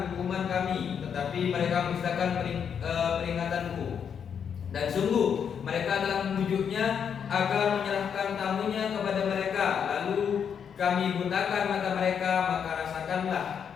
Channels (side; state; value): right; quieter; 7.5 dB